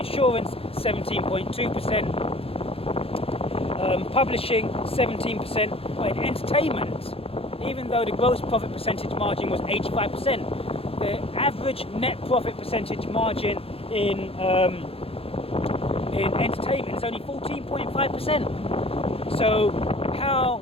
17.2%, publishing 17%, but in entertainment, even though the gross profit percentage margin was 85%, the average net profit percentage margin in entertainment is only 14.5%. So how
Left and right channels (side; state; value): right; late; 0.28 ms